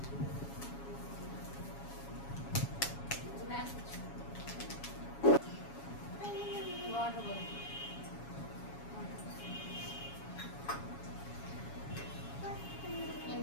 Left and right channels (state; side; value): late; right; 7.2 ms